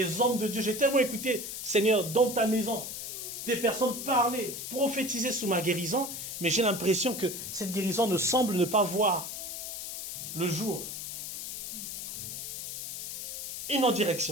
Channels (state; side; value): noise; left; hiss, 7 dB below the sound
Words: hommes de Dieu, j'ai tellement écouté, Seigneur, dans ta maison, des personnes parler, prophétiser sous ma guérison, mais j'ai l'impression que cette guérison ne semble ne pas voir le jour. Une autre